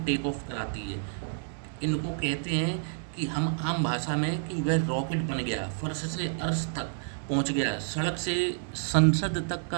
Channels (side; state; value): left; silent; 58 dB below the other